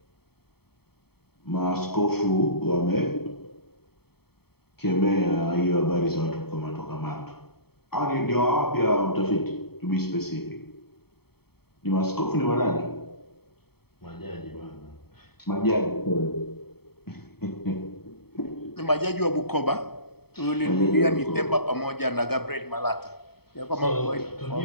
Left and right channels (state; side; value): late; right; 0.96 ms